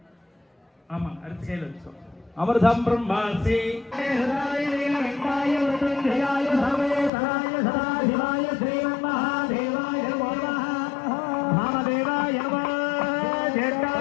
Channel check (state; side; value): drops out; right; at 7.1 s